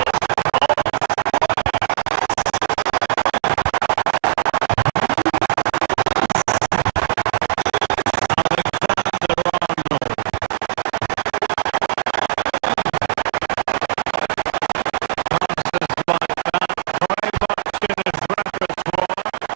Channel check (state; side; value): silent; left; digital silence